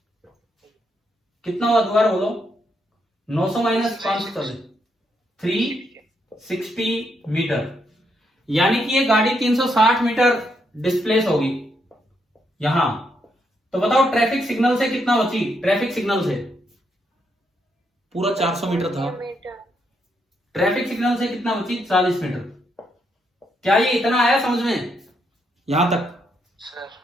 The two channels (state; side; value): normal; both; correlation 0.78